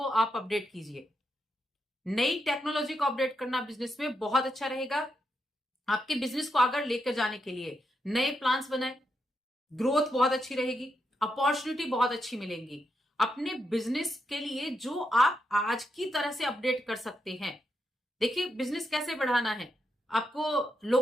आप अपडेट कीजिए। नई टेक्नोलॉजी को अपडेट करना बिजनेस में बहुत अच्छा रहेगा। आपके बिजनेस को आगे लेकर जाने के लिए नए प्लान्स बनाए, ग्रोथ बहुत अच्छी रहेगी, अपॉर्चुनिटी बहुत अच्छी मिलेंगी। अपने बिजनेस के लिए जो आप आज की तरह से अपडेट कर सकते हैं। देखिए, बिजनेस कैसे बढ़ाना है, आपको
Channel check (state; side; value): normal; both; correlation 0.83